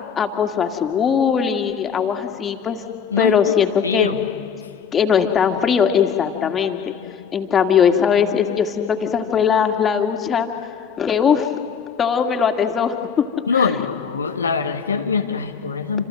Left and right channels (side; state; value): right; quieter; 6.8 dB